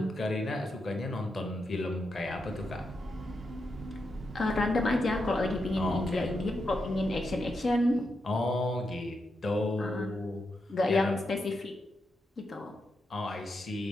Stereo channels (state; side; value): normal; both; correlation 0.85